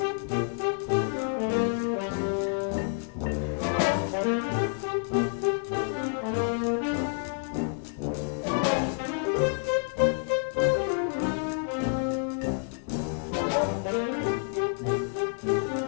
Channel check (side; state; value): right; silent; 59 dB below the other